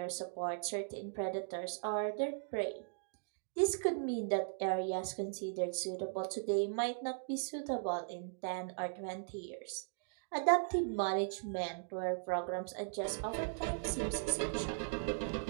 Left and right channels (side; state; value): left; silent; digital silence